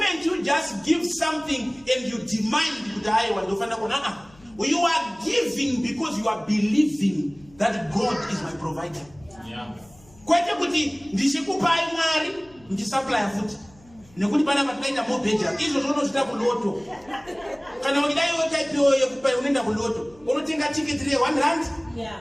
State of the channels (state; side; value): noise; left; hum, 27 dB below the sound